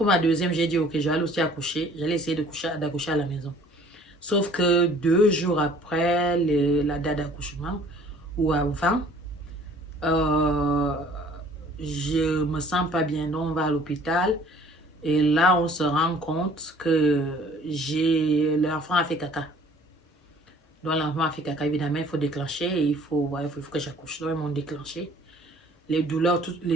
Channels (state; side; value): normal; both; correlation 0.53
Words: ma deuxième, j'ai dit, ok, j'allais aussi accoucher. J'allais essayer d'accoucher à la maison. Sauf que 2 jours après la date d'accouchement, ou avant, euh, je me sens pas bien. Donc, on va à l'hôpital. Et là, on se rend compte que l'enfant a fait caca. Donc, l'enfant a fait caca, évidemment, il faut déclencher et il faut que j'accouche. Donc, ils m'ont déclenché. Les douleurs, tout